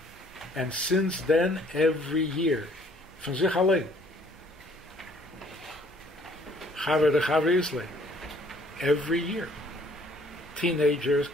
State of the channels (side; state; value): both; normal; correlation 0.60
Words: And since then, every year, von sich allein. Chaver de Chaver Isle. Every year. Teenagers,